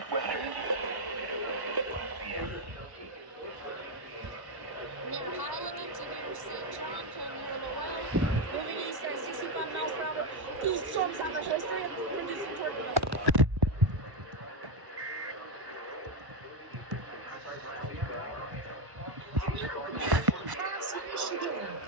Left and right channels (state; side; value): late; left; 1.1 ms